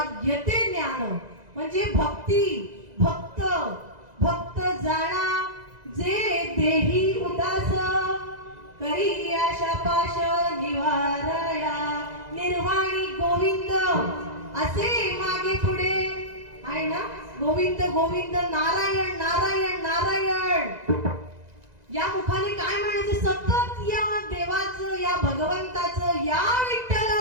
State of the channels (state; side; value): late; left; 2.0 ms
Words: ते ज्ञान. म्हणजे भक्ती भक्त भक्त जाणा जे देही उदास, करी आशा पाश निवारया निर्वाणी गोविंद. असे मागे पुढे आहे ना, गोविंद गोविंद नारायण नारायण नारायण. या मुखाने काय म्हणायचं, सतत या देवाचं, या भगवंताचं, या